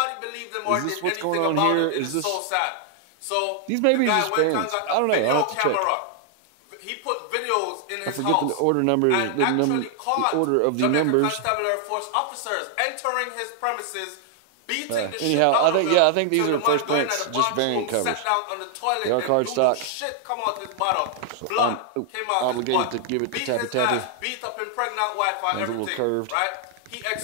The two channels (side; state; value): both; different; correlation 0.00